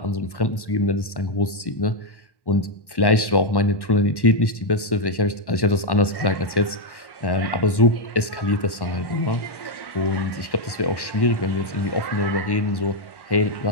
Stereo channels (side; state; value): right; late; 1.1 ms